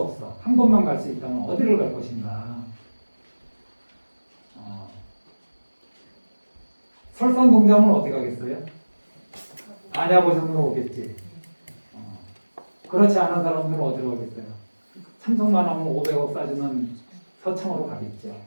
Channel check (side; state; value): both; inverted; correlation -1.00